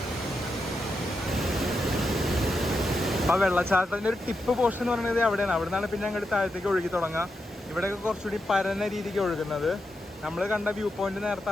ആ വെള്ളച്ചാട്ടത്തിൻ്റെ ഒരു ടിപ്പ് പോർഷൻ എന്ന് പറയുന്നത് അവിടെയാണ്. അവിടെ നിന്നാണ് പിന്നെ അങ്ങോട്ട് താഴത്തേക്ക് ഒഴുകി തുടങ്ങുക. ഇവിടെയൊക്കെ കുറച്ചുകൂടി പരന്ന രീതിക്ക് ഒഴുകുന്നത്. നമ്മൾ കണ്ട വ്യൂ പോയിന്റ് നേരത്തെ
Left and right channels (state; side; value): normal; both; correlation 0.86